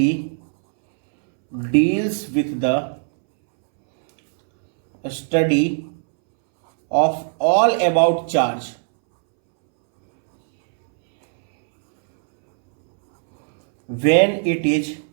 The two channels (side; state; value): left; silent; 65 dB below the other